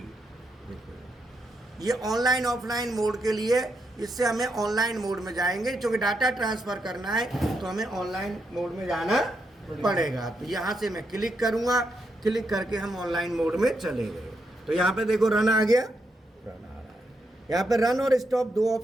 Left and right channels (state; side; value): normal; both; correlation 0.81